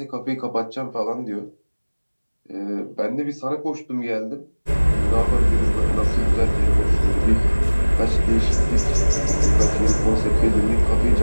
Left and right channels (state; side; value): inverted; both; correlation -1.00